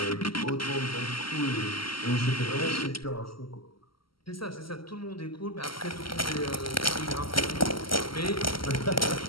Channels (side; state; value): right; late; 0.74 ms